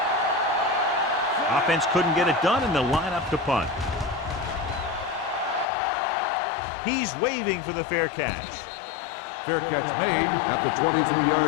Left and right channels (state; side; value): drops out; right; at 5.7 s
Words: Offense couldn't get it done, and they'll line up to punt. He's waving for the fair catch. Fair catch made at the